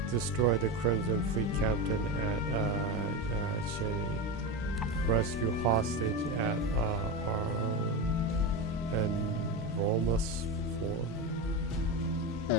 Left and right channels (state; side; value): normal; both; correlation 0.18